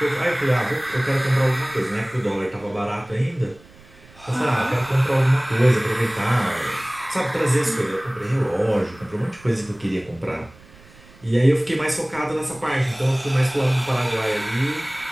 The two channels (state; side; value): noise; right; rumble, 24 dB below the sound